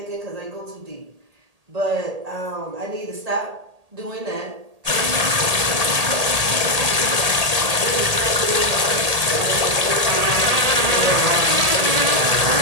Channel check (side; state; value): left; late; 1.8 ms